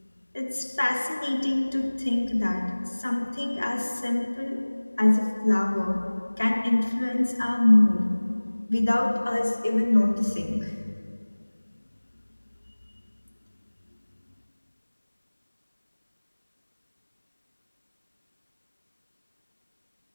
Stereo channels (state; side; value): inverted; both; correlation -1.00